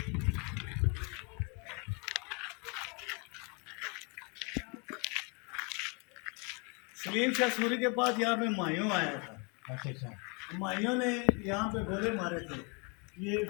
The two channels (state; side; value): quieter; right; 32.9 dB